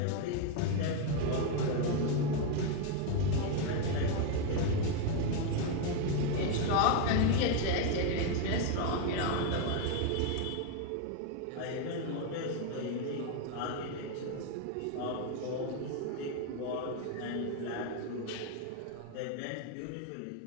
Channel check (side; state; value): both; different; correlation 0.01